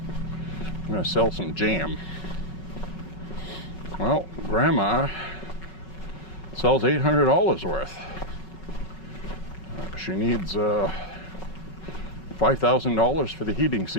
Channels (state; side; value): late; right; 5.4 ms